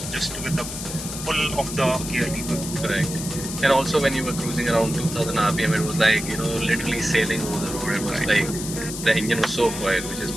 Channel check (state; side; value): noise; left; hiss, 8 dB below the sound